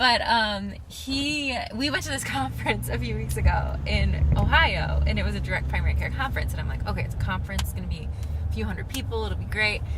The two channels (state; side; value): identical; both; correlation 1.00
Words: we went to this conference a few weeks ago in Ohio, and it was a direct primary care conference. And I'm like, okay, it's a conference. It's going to be a few hundred people. It'll be great.